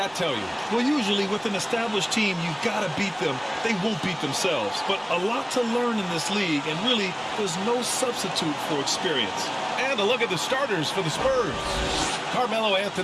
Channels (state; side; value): identical; both; correlation 1.00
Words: tell you? Well, usually with an established team, you've got to beat them. They won't beat themselves. But a lot to learn in this league, and really, there's no substitute for experience. And a look at the starters for the Spurs. Carmelo